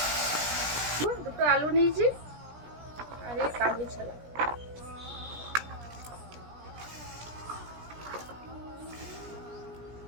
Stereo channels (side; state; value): left; late; 17 ms